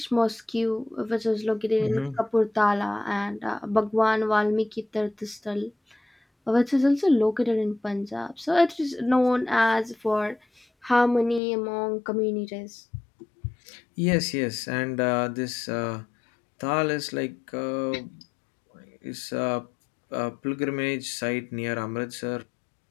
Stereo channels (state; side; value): drops out; right; at 11.4 s